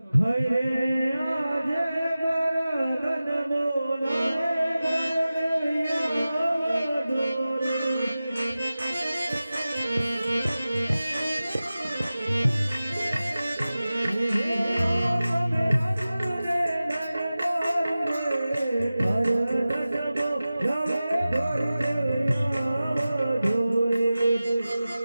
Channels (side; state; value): both; inverted; correlation -0.96